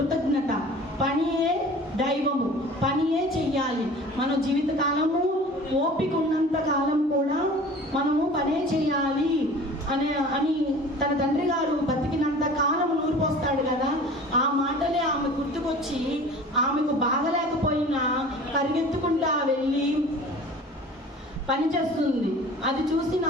పనియే దైవము, పనియే చెయ్యాలి, మన జీవితకాలము ఓపిక ఉన్నంత కాలం కూడా మనము పనే చేయాలి అని తన తండ్రి గారు బతికినంత కాలం నూరిపోస్తాడు కదా, ఆ మాటలే ఆమె గుర్తుకొచ్చి ఆమెకు బాగలేకపోయినా పరిగెత్తుకుంటా వెళ్ళి పని చేస్తుంది. అది చూసి నా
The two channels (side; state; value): both; normal; correlation 0.43